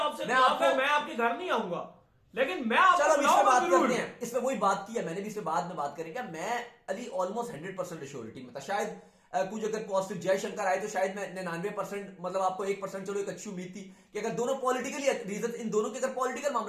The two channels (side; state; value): both; identical; correlation 1.00